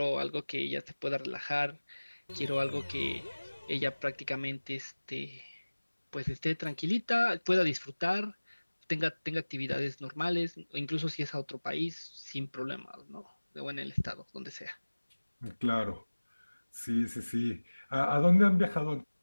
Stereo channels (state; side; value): inverted; both; correlation -1.00